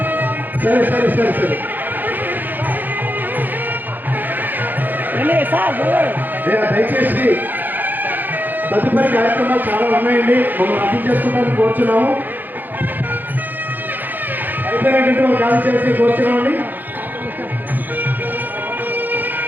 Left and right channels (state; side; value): late; left; 0.088 ms